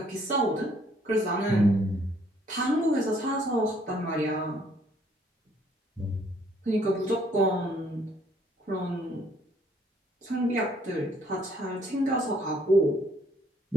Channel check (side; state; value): both; normal; correlation 0.65